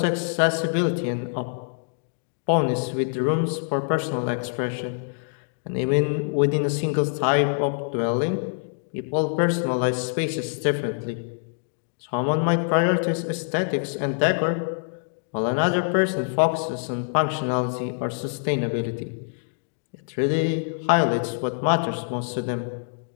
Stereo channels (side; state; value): right; silent; digital silence